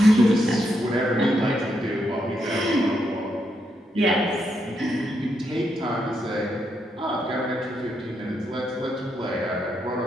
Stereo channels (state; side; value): normal; both; correlation 0.80